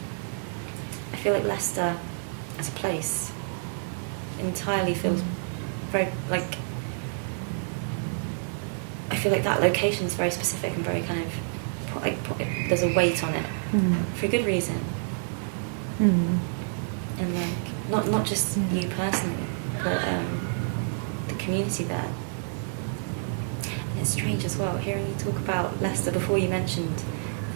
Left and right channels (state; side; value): silent; left; digital silence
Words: I feel like Leicester, as a place, entirely feels very, like, I feel like that location is very specific and very kind of, like, there's a weight on it for a good reason. And, like, not just you personally, but the community there. And it's strange as well, hearing you talk about Leicester before you mentioned